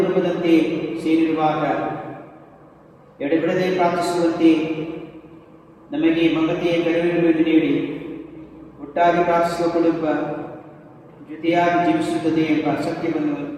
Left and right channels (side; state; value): both; identical; correlation 1.00